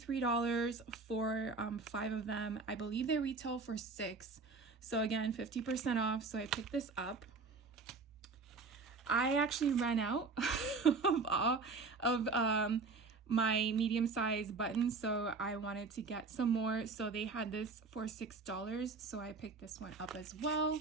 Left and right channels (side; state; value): left; quieter; 4.2 dB